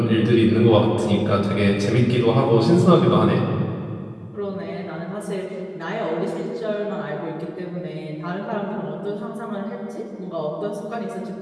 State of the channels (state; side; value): identical; both; correlation 1.00